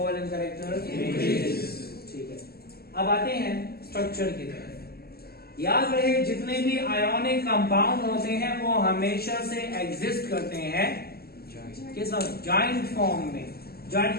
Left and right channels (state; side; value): late; right; 0.45 ms